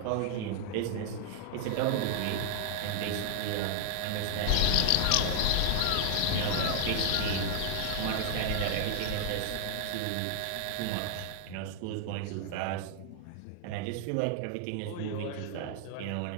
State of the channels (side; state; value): both; different; correlation -0.01